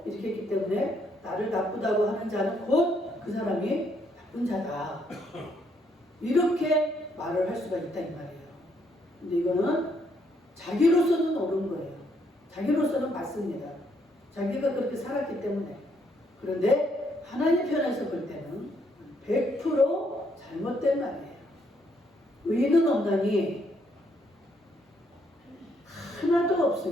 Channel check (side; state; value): both; normal; correlation 0.72